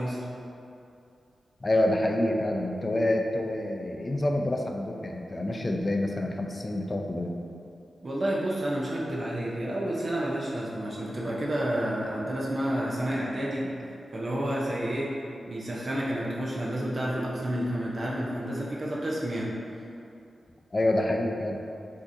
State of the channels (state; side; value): normal; both; correlation 0.93